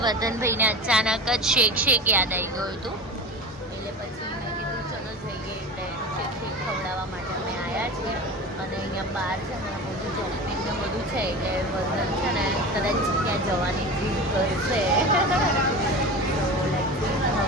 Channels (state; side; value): normal; both; correlation 0.31